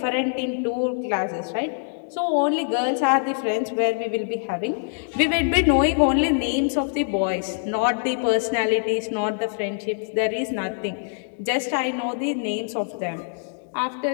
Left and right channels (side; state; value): right; silent; digital silence